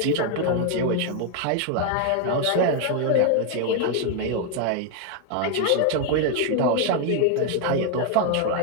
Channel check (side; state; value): both; different; correlation 0.01